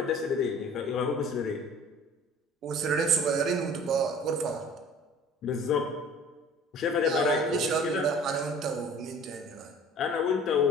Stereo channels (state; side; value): normal; both; correlation 0.47